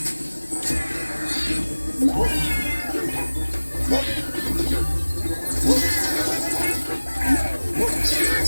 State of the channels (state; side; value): inverted; both; correlation -1.00